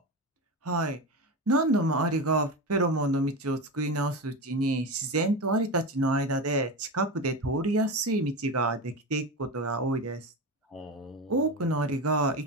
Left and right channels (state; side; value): normal; both; correlation 0.22